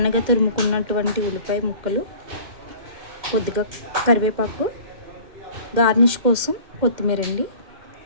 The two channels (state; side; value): late; left; 2.1 ms